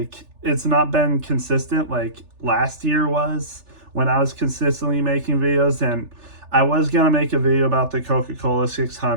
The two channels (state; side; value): late; left; 3.4 ms